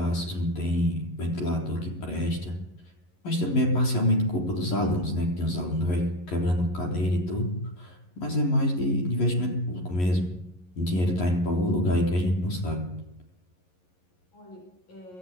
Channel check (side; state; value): right; late; 11 ms